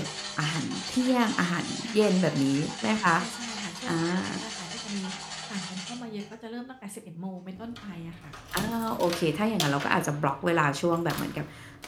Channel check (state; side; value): identical; both; correlation 1.00